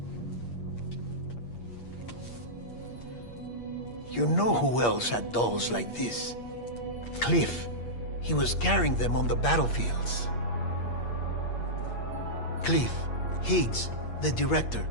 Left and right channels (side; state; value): right; late; 8.5 ms